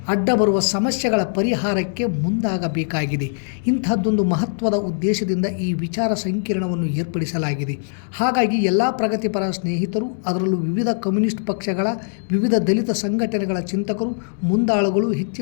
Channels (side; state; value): right; silent; digital silence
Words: ಅಡ್ಡ ಬರುವ ಸಮಸ್ಯೆಗಳ ಪರಿಹಾರಕ್ಕೆ ಮುಂದಾಗಬೇಕಾಗಿದೆ. ಇಂತಹದ್ದೊಂದು ಮಹತ್ವದ ಉದ್ದೇಶದಿಂದ ಈ ವಿಚಾರ ಸಂಕಿರಣವನ್ನು ಏರ್ಪಡಿಸಲಾಗಿದೆ. ಹಾಗಾಗಿ ಎಲ್ಲ ಪ್ರಗತಿಪರ ಸ್ನೇಹಿತರು, ಅದರಲ್ಲೂ ವಿವಿಧ ಕಮ್ಯುನಿಸ್ಟ್ ಪಕ್ಷಗಳ, ವಿವಿಧ ದಲಿತ ಸಂಘಟನೆಗಳ ಚಿಂತಕರು, ಮುಂದಾಳುಗಳು